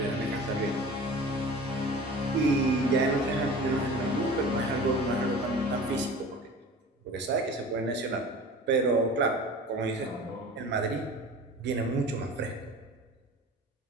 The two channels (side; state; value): both; normal; correlation 0.39